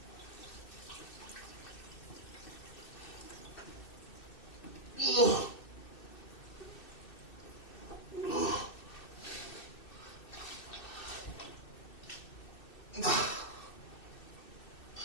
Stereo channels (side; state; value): right; late; 2.6 ms